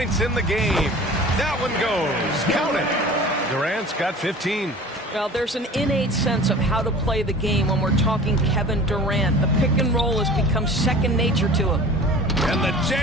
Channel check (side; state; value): both; normal; correlation 0.41